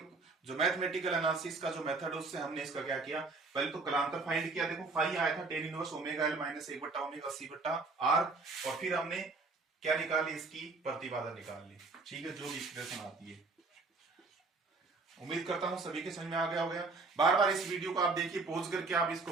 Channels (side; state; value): left; quieter; 3.8 dB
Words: जो मैथमेटिकल एनालिसिस का जो मेथड है उससे हमने इसका क्या किया, पहले तो कलांतर फाइंड किया। देखो फाई आया था tan inverse omega L minus 1/ओमेगा C बटा आर, और फिर हमने क्या निकाली, इसकी प्रतिबाधा निकाल ली। ठीक है, जो भी एक्सप्रेशन आती है। उम्मीद करता हूं सभी के समझ में आ गया होगा। बार बार इस वीडियो को आप देखिए, पॉज करके आप इसको